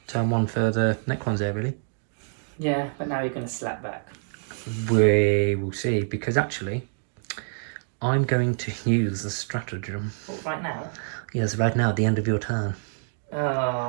1 for the Necrons there, really. Yeah, but now you're going to slap back. We will see, because actually, I'm going to use the stratagem. What, right now? Yes, right now, at the end of your turn. Oh,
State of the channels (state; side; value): silent; left; digital silence